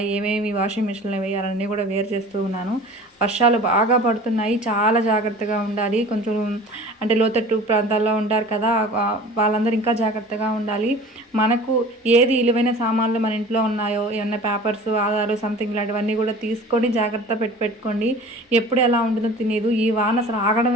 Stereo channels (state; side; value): normal; both; correlation 0.42